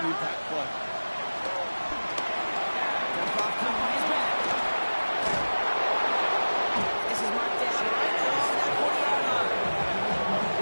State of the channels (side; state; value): both; inverted; correlation -1.00